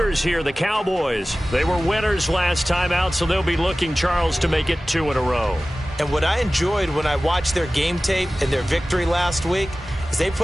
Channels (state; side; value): normal; both; correlation 0.97